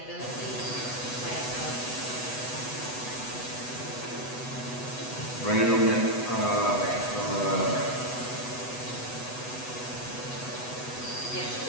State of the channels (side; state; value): right; late; 8.1 ms